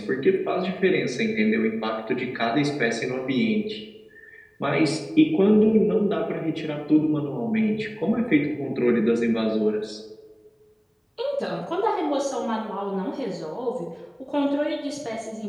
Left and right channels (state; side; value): identical; both; correlation 1.00